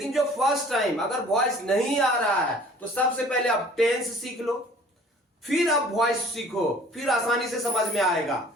जो फर्स्ट टाइम अगर वॉइस नहीं आ रहा है तो सबसे पहले आप टेंस सीख लो, फिर आप वॉइस सीखो, फिर आसानी से समझ में आएगा।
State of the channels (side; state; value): both; normal; correlation 0.51